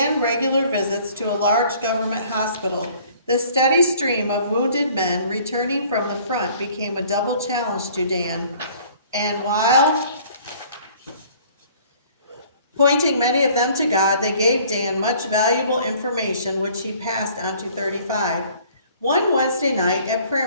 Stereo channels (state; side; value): inverted; both; correlation -0.54